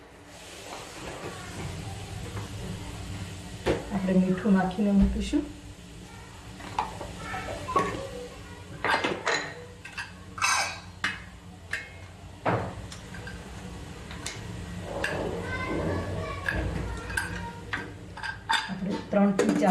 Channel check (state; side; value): identical; both; correlation 1.00